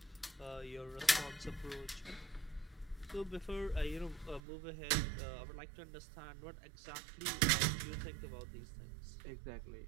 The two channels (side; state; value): left; drops out; at 4.4 s